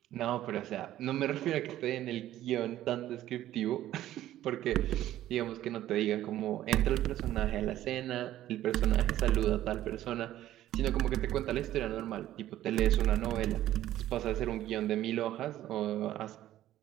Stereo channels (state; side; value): quieter; left; 13.4 dB